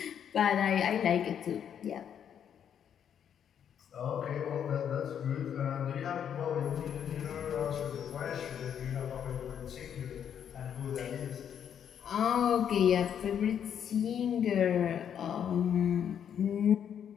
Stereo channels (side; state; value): right; quieter; 8.7 dB